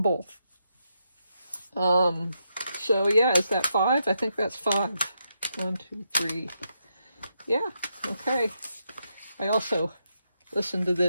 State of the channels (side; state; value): both; inverted; correlation -0.82